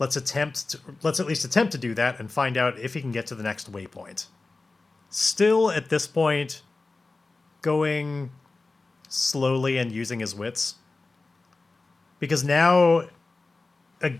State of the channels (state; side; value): quieter; right; 3.6 dB